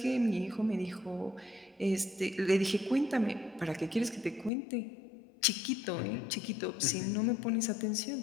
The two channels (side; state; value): right; drops out; at 4.5 s